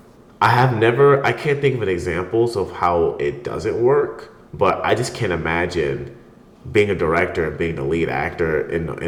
I can't think of examples of how it doesn't work, but I just can't imagine being a director and being the lead actor in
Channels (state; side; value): identical; both; correlation 1.00